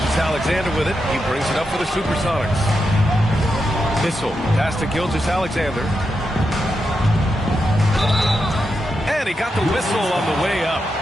with it. He brings it up for the Supersonics. Issel, pass to Gilgeous-Alexander. And he got the whistle on the way up.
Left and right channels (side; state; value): both; normal; correlation 0.86